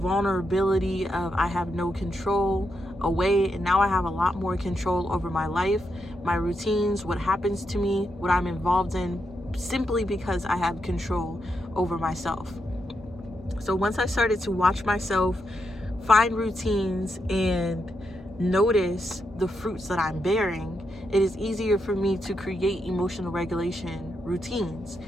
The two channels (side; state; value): both; normal; correlation 0.83